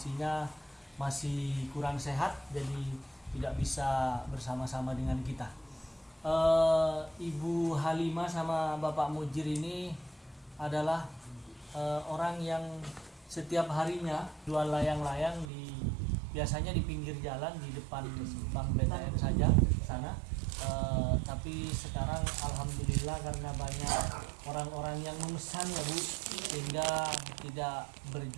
masih kurang sehat, jadi tidak bisa bersama-sama dengan kita. Ibu Halimah sama Bapak Mujir ini adalah orang yang setiap harinya jual layang-layang biasanya di pinggir jalan di depan Bank BTN saja sana. Tapi sekarang alhamdulillah karena banyak orang-orang yang memesan ya Bu, sehingga tidak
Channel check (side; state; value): left; drops out; at 15.5 s